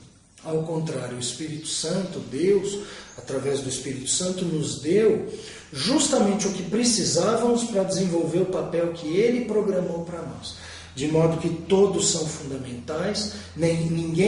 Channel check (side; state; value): both; identical; correlation 1.00